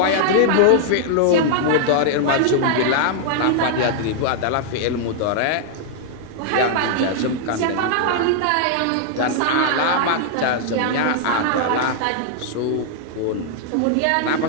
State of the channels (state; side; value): different; both; correlation -0.01